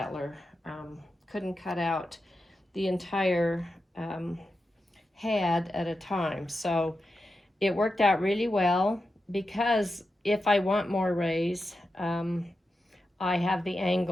couldn't cut out the entire head at a time. So it worked out really well because if I want more rays, I have the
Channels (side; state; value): both; normal; correlation 0.90